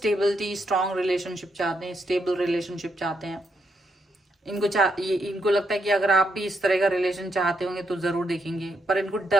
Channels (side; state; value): both; normal; correlation 0.79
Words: स्ट्रॉन्ग रिलेशनशिप चाहते हैं, स्टेबल रिलेशनशिप चाहते हैं। इनको लगता है कि अगर आप भी इस तरह का रिलेशन चाहते होंगे तो जरूर देखेंगे, पर इनको